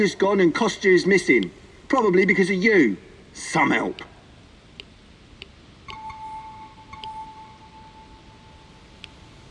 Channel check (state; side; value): identical; both; correlation 1.00